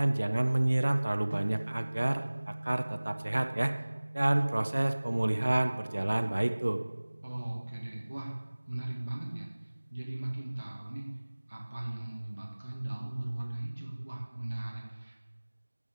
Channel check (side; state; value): both; inverted; correlation -1.00